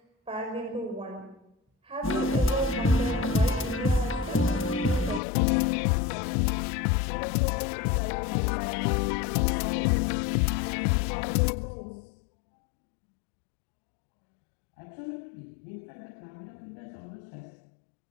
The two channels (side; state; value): right; drops out; at 5.2 s